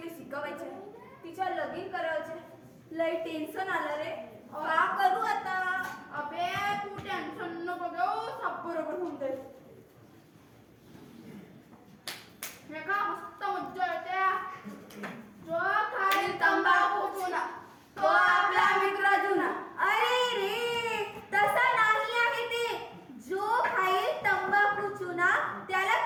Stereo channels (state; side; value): identical; both; correlation 1.00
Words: शिकवायचे, तिच्या लगीन करायचे. लय टेन्शन आलं रे, का करू आता? अबे तू टेन्शन नको घेऊ, सब बरोबर होऊन जाईल. हे का मस्त मज्जा येते. जो खाईल तंबाखू चुना तो आपला मित्र जुना. अरे रे, तसा नाही आहे ते. जो खाईल तंबाखू चुना त्याला